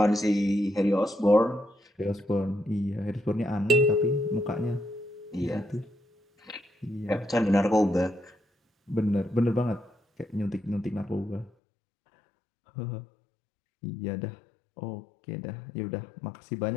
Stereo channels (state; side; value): drops out; right; at 11.5 s